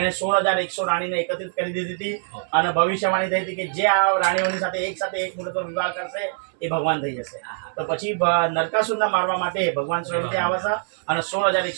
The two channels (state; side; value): silent; left; 63 dB below the other